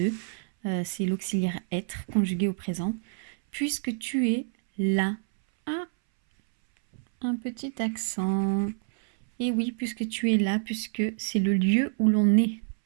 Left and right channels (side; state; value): left; silent; 60 dB below the other